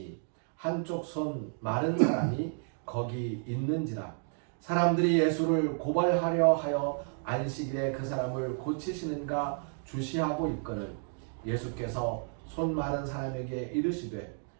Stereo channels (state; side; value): silent; left; 57 dB below the other